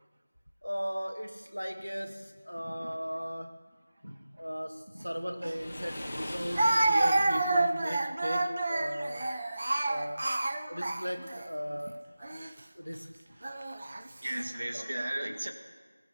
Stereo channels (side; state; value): both; inverted; correlation -0.94